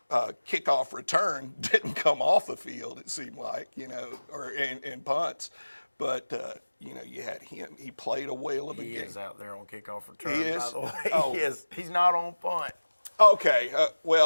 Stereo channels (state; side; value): inverted; both; correlation -1.00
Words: kickoff return, didn't come off the field, it seemed like, you know, or in punts. But, you know, you had him. He played a whale of a game. He is out there on kickoff return, He is? by the way. Oh. He is. He's not on punt. Okay,